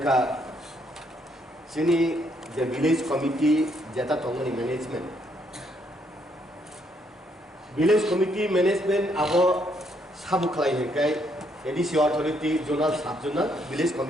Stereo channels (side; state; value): both; normal; correlation 0.72